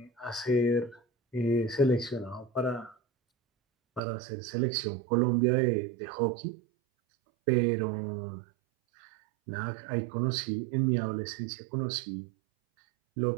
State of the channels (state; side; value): drops out; left; at 4.0 s